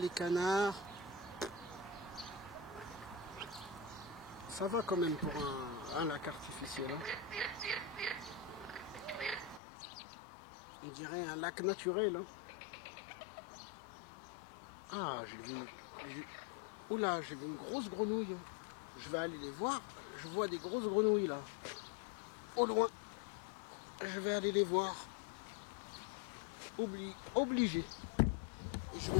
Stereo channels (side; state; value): right; drops out; at 9.6 s